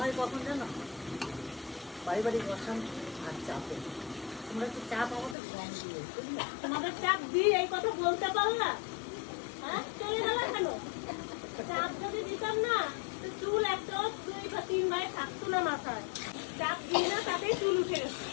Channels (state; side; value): drops out; right; at 5.4 s